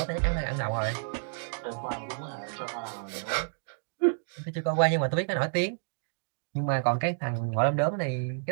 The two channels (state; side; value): silent; left; digital silence